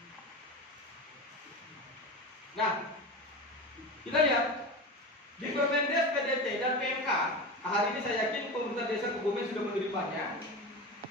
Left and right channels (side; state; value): both; normal; correlation 0.26